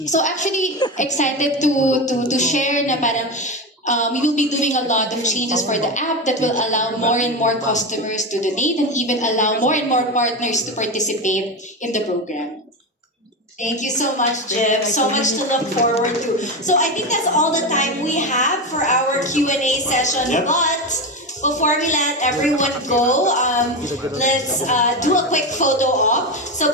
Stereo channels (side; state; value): both; normal; correlation 0.17